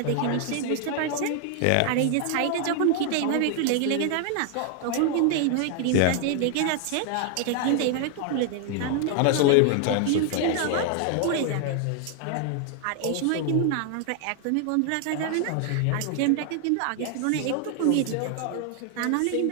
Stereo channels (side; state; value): both; different; correlation 0.00